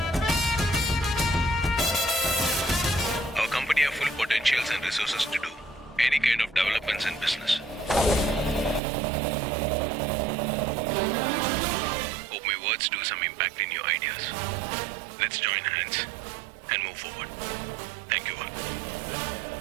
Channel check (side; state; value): left; drops out; at 8.8 s